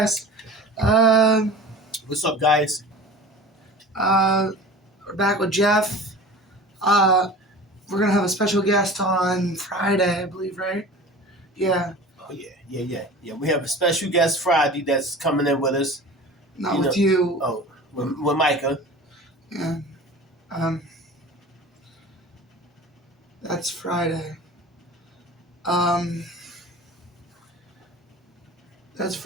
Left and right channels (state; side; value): normal; both; correlation 0.38